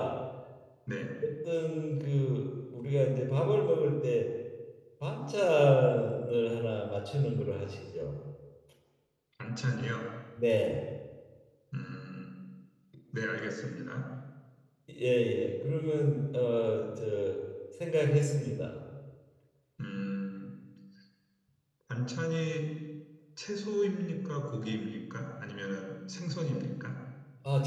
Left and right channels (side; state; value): both; identical; correlation 1.00